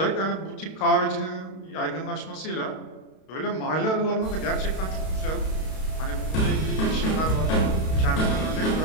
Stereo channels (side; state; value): right; late; 32 ms